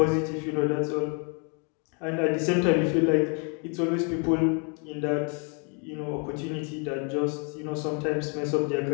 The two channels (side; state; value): right; quieter; 36.7 dB